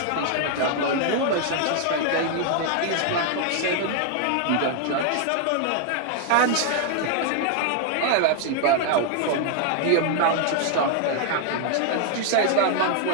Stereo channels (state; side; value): different; both; correlation 0.00